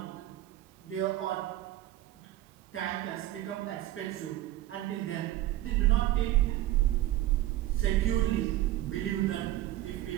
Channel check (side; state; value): left; quieter; 14.8 dB